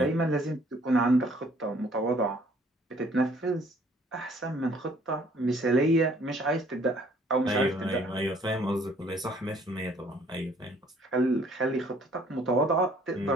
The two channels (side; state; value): both; normal; correlation 0.59